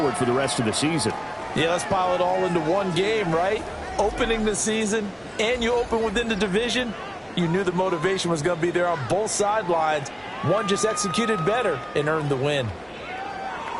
for the rest of the season. Yeah, let's pile it all into one game, right? Opening the season, and you open within the division. You knew the motivation was going to be there on both sidelines. One just executed better and earned the win.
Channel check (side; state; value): both; identical; correlation 1.00